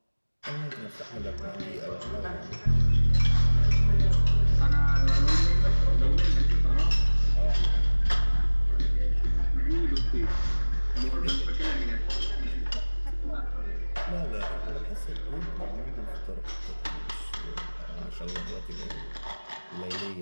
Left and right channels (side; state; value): both; inverted; correlation -1.00